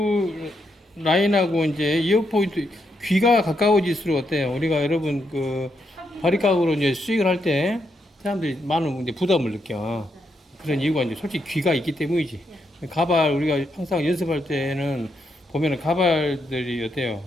라인하고 이제 이어 포인트 귀가 가까워질수록 어때요? 우리가 여러분 바리깡으로 이제 스윙을 할 때 사람들이 많은 이제 부담을 느껴. 그런 이유가 이제 솔직히 귀가 있기 때문이지. 가발 우리가 항상 연습할 때는 보면은 가발들이 어때요?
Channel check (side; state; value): both; normal; correlation 0.80